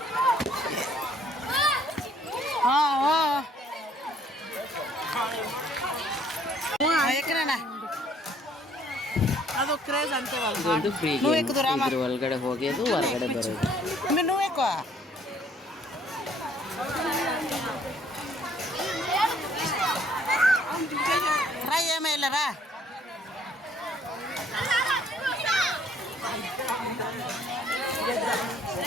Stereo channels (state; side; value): normal; both; correlation 0.62